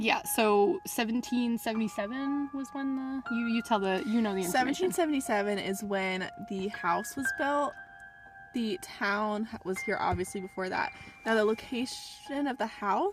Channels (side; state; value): both; identical; correlation 1.00